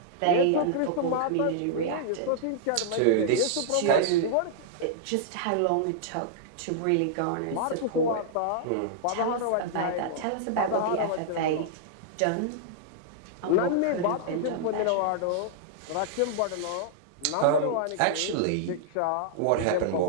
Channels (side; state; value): both; different; correlation -0.01